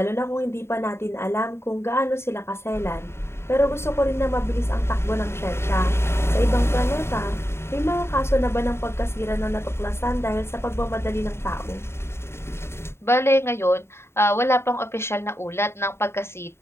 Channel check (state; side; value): late; right; 0.12 ms